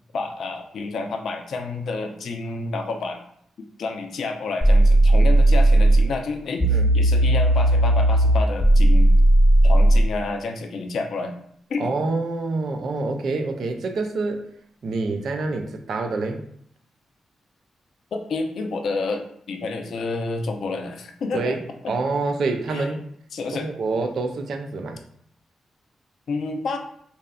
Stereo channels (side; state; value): both; normal; correlation 0.79